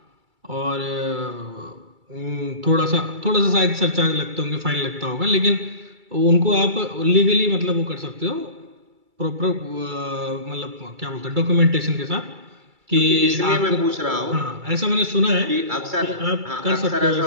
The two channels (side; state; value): left; late; 2.3 ms